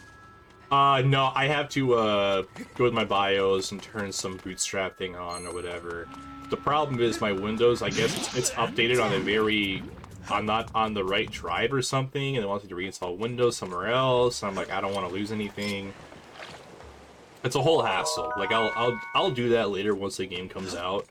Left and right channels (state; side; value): identical; both; correlation 1.00